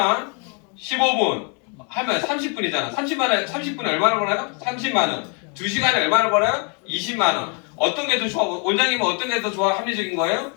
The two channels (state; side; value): quieter; right; 36.9 dB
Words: 15분 하면 30분이잖아. 30분에 얼마나 벌어요? 30만 원. 2시간에 얼마나 벌어요? 20만 원. 어떤 게 더 좋아? 원장님은 어떤 게 더 좋아? 합리적인 거예요?